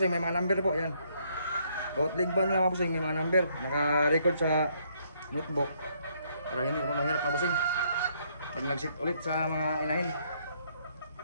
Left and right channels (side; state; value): both; inverted; correlation -0.70